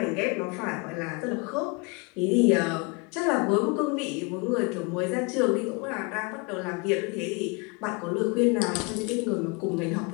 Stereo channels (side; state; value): right; quieter; 30.3 dB